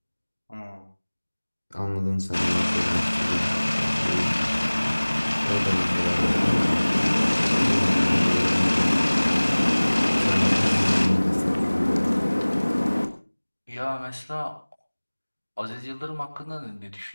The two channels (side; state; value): both; inverted; correlation -1.00